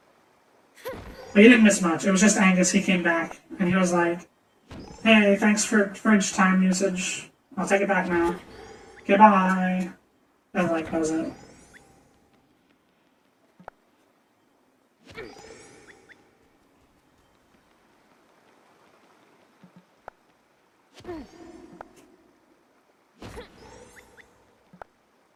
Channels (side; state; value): both; identical; correlation 1.00